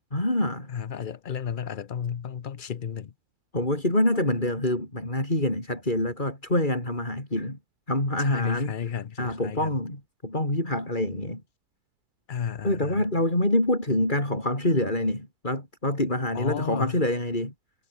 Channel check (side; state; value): right; late; 2.3 ms